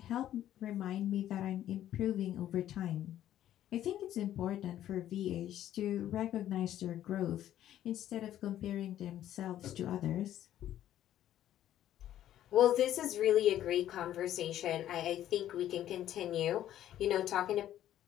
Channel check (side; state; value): right; quieter; 12.1 dB